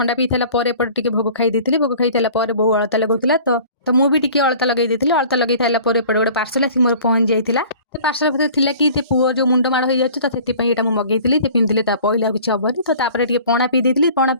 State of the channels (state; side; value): inverted; both; correlation -0.46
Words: पी सारापर एपटे भोग खाई देती भोग खाई सारापर बो अलता लगुला तो मुझे भी अलता लगे अलता लगे सारापर एपटे गोटे पार्सल आसिक मोर पहुँच जाइए तो पार्सल भर थी कि पुओ जो मुंड माड़ हो जाए तो से मगेली पिंधिले पहले किसी हेनी तो तापर पणा पी देती पणा